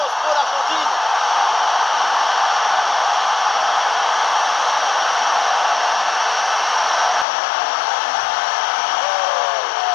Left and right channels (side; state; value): right; drops out; at 7.2 s